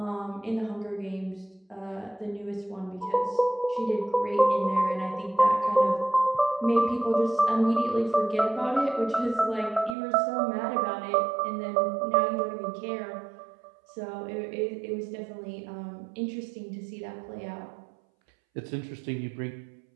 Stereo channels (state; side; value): drops out; left; at 10.0 s